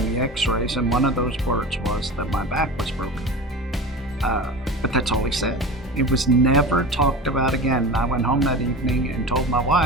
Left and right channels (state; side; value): normal; both; correlation 0.32